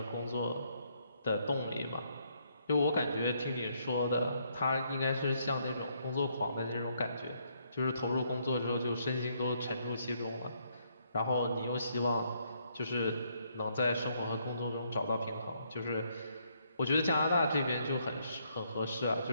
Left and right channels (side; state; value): both; inverted; correlation -0.72